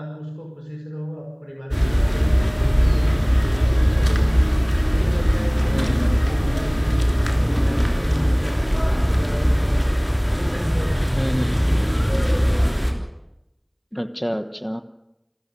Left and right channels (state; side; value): identical; both; correlation 1.00